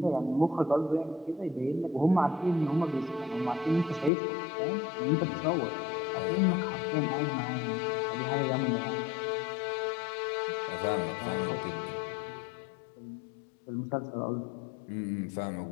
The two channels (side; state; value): right; drops out; at 4.1 s